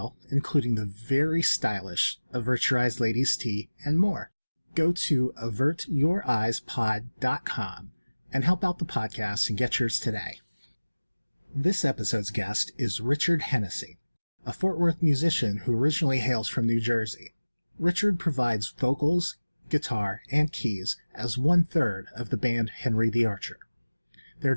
including the very stylish Avert Your Eyes Ladies Tee and more. Go to avertyoureyespod.com and help out the podcast and get yours today. This episode's guest is Richard Hennessy, a Fort Worth musician who originally hails from New Jersey. Richard provides vocals, guitar, and keys as 1/3 of the band Henry the Archer. Their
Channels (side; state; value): both; inverted; correlation -1.00